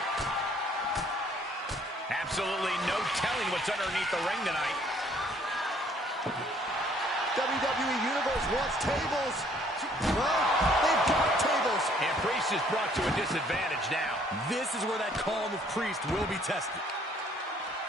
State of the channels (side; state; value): both; normal; correlation 0.61